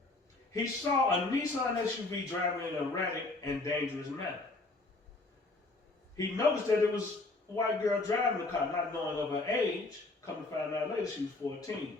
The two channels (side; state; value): right; quieter; 3.2 dB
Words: he saw a Nissan SUV driving in an erratic and dangerous manner. He noticed that it was a white girl driving the car, not knowing of her age. Come to find out later, she was 14.